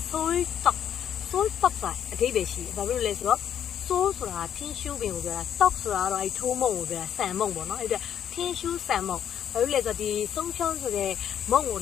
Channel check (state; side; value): quieter; right; 9.4 dB